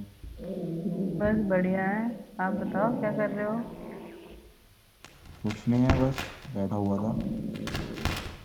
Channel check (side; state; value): both; identical; correlation 1.00